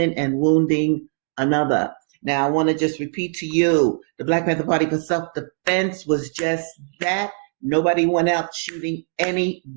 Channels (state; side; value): silent; left; 62 dB below the other